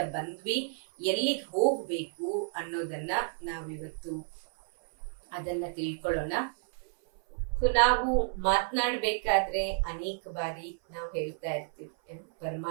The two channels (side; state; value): left; silent; 56 dB below the other